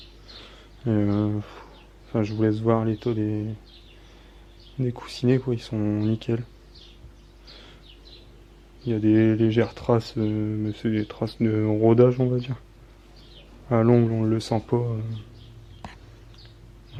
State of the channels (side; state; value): both; identical; correlation 1.00